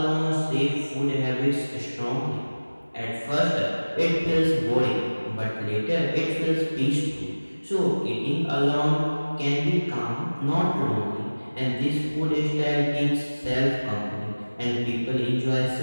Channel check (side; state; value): both; inverted; correlation -1.00